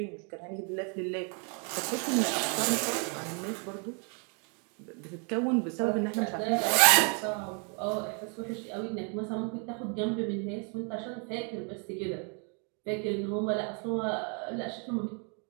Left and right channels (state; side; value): quieter; left; 37.8 dB